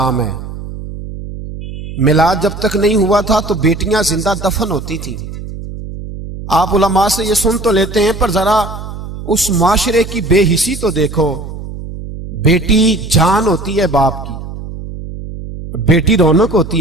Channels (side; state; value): right; noise; hum, 10 dB below the sound